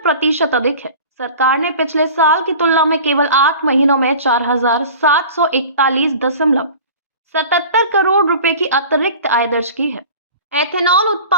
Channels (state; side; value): inverted; both; correlation -0.40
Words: अधिक है। सरकार ने पिछले साल की तुलना में केवल 8 महीनों में 4,741.77 करोड़ रुपए की अतिरिक्त आय दर्ज की है। एथेनॉल